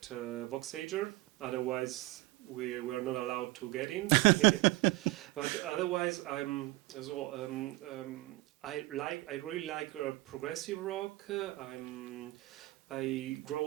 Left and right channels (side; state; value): left; quieter; 20.1 dB